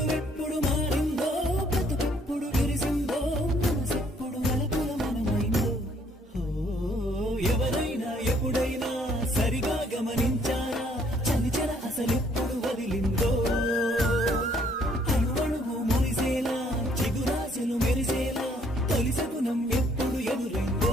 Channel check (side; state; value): both; normal; correlation 0.64